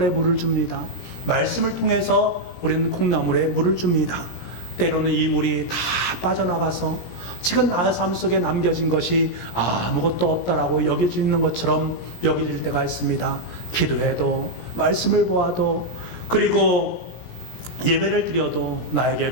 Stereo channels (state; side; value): late; right; 17 ms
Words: 물을 줍니다. 말씀을 통해서 우리는 콩나물에 물을 줍니다. 때로는 이 물이 다 빠져나가서 지금 나의 삶 속에 남겨진 것이 아무것도 없다라고 여겨지는 것처럼 여겨질 때가 있습니다. 기도해도, 말씀을 보아도, 그리고 예배를 드려도 나에게